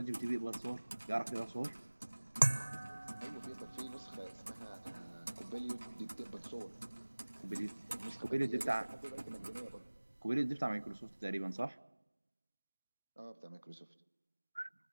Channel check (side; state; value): both; inverted; correlation -1.00